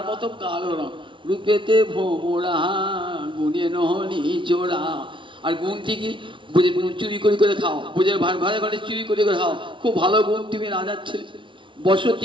মতো কালো রং। রূপেতে ভ্রমরা গুণে নিচোরা, আর গুণ থেকে চুরি করে করে খাও, বুঝে ভাড়া ঘরে চুরি করে করে খাও, খুব ভালো গুণ, তুমি রাজার ছেলে।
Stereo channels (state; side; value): late; left; 0.24 ms